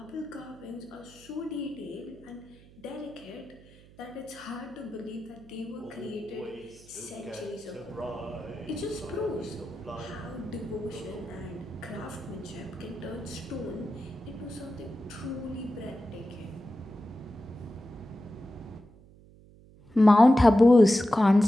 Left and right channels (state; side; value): noise; right; hum, 24 dB below the sound